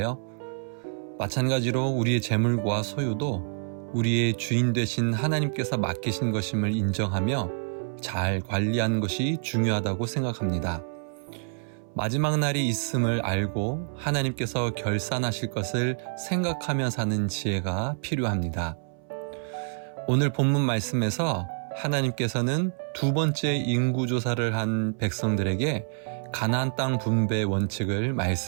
마찬가지로 우리의 재물과 소유도 우리의 주인 되신 하나님께서 맡기신 것임을 인정하며 잘 관리하는 것이 중요하다고 생각합니다. 마지막 날이 있음을 알고 하나님께서 결산하실 것을 생각하며 사는 지혜가 필요합니다. 오늘 본문 말씀에서 하나님께서는 두 번째 인구조사를 한 백성들에게 가나안 땅 분배 원칙을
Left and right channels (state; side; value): silent; left; 60 dB below the other